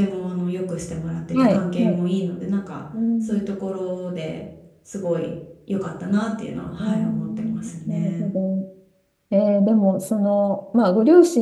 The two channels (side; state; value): both; identical; correlation 1.00